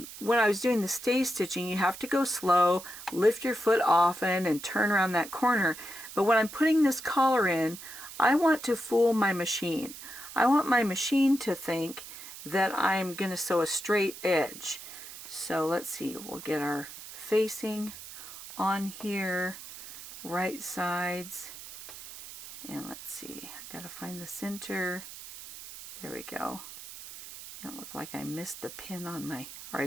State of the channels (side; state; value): right; noise; hiss, 13 dB below the sound